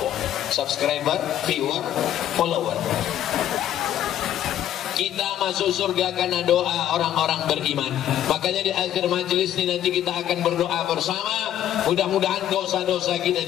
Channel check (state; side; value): quieter; right; 11.4 dB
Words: subscriber, viewer, follower. Kita masuk surga karena doa orang-orang beriman. Makanya di akhir majelis ini nanti kita akan berdoa bersama. Mudah-mudahan dosa-dosa kita